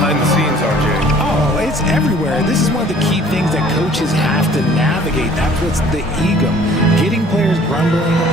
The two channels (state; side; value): normal; both; correlation 0.54